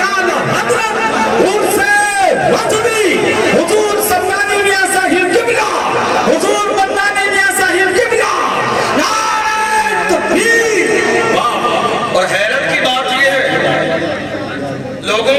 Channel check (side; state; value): right; noise; hum, 29 dB below the sound